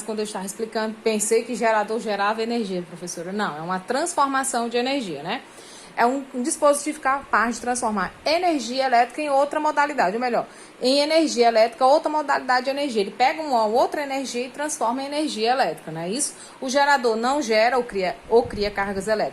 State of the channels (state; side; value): identical; both; correlation 1.00